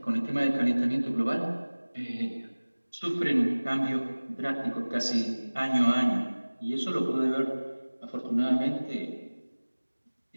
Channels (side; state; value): both; inverted; correlation -1.00